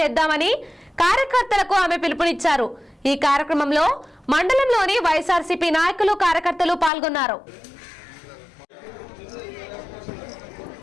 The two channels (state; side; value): drops out; right; at 6.9 s